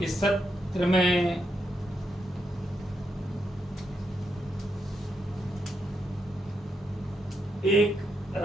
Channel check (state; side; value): normal; both; correlation 0.81